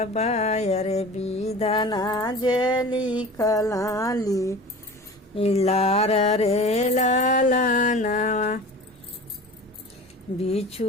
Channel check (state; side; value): normal; both; correlation 0.38